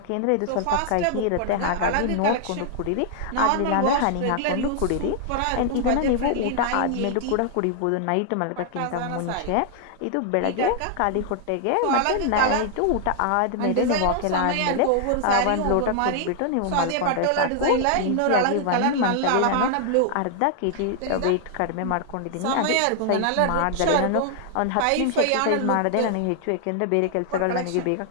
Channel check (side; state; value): both; different; correlation 0.00